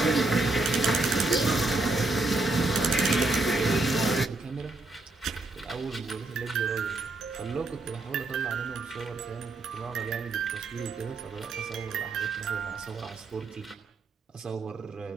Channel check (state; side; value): quieter; left; 3.2 dB